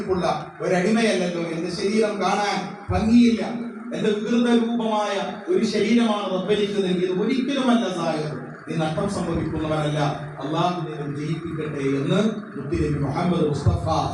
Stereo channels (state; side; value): identical; both; correlation 1.00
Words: ഒരടിമയല്ലല്ലോ. എന്റെ ശരീരം കാണാൻ ഭംഗിയില്ല. എന്റെ വികൃത രൂപമായ ഒരു ശരീരമാണ് റബ്ബിലേക്ക് നൽകിയത്. ഒരിക്കലുമല്ല സാഹിർ, നീ നഷ്ടം സംഭവിക്കുന്നവരല്ല. അള്ളാഹു നിന്നെ ജയിപ്പിക്കട്ടെ എന്ന് മുത്തുനബി മുഹമ്മദ് മുസ്തഫ